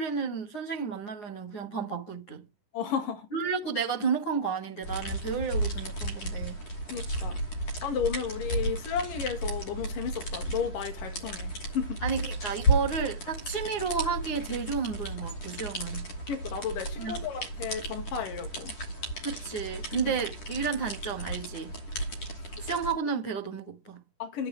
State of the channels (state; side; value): late; right; 10 ms